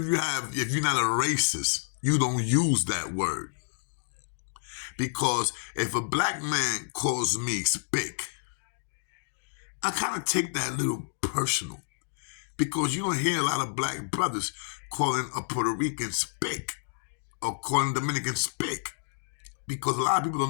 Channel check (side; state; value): right; silent; digital silence